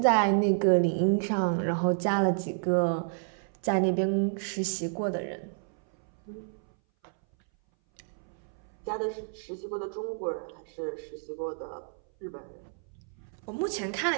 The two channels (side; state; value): left; silent; 58 dB below the other